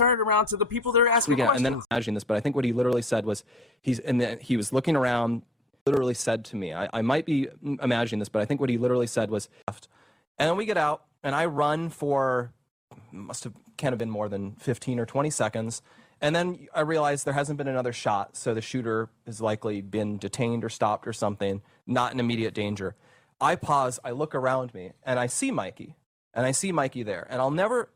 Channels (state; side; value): normal; both; correlation 0.78